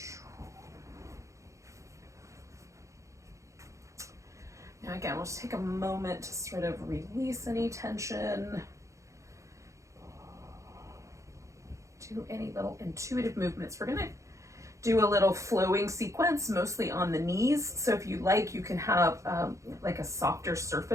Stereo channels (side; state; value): left; late; 0.15 ms